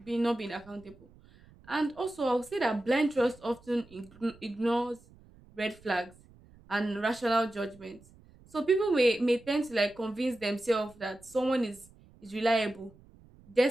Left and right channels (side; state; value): right; noise; rumble, 25 dB below the sound